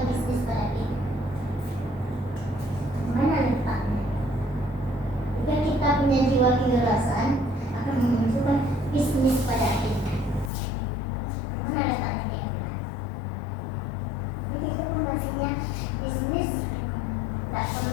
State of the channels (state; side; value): drops out; right; at 10.5 s